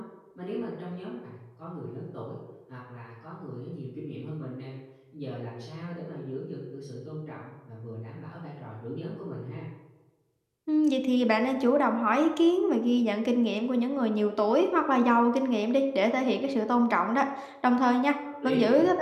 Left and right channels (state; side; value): identical; both; correlation 1.00